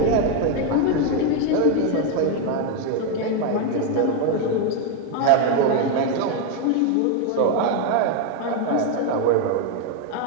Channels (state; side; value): different; both; correlation 0.02